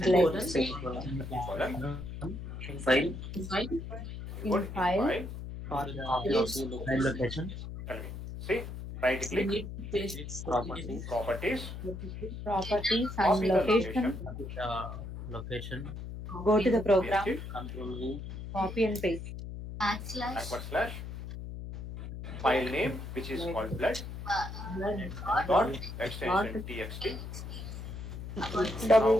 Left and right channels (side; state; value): left; noise; hum, 8 dB below the sound